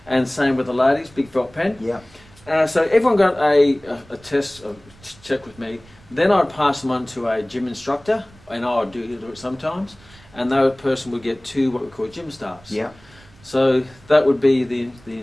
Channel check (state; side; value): noise; right; rumble, 26 dB below the sound